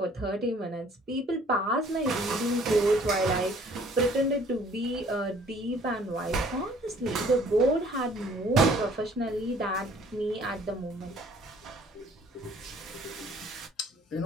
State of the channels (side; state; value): both; normal; correlation 0.57